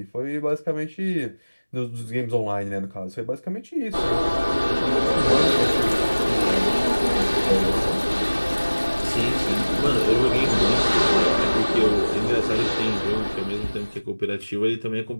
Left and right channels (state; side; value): inverted; both; correlation -1.00